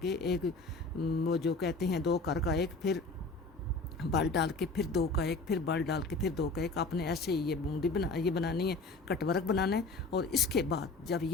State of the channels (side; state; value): right; quieter; 3.5 dB